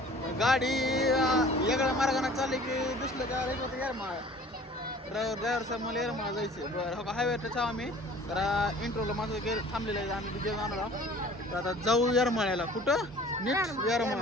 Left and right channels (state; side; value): normal; both; correlation 0.48